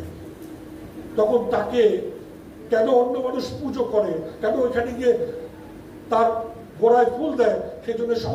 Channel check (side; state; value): both; identical; correlation 1.00